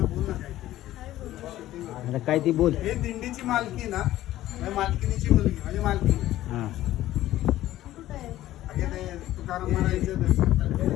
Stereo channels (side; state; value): right; quieter; 14.5 dB